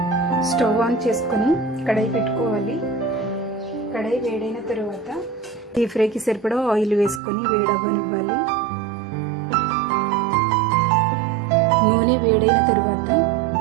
స్టవ్ ఆన్ చేసుకొని కడాయి పెట్టుకోవాలి. కడాయి వేడైన తరువాత డీప్ ఫ్రైకి సరిపడా ఆయిల్ వేసుకొని వేడవ్వనివ్వాలి. నూనె వేడైన తరువాత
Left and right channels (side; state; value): left; drops out; at 7.2 s